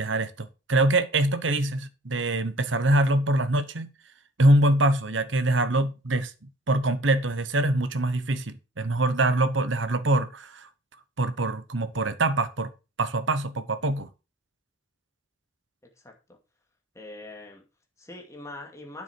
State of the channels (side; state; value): both; normal; correlation 0.50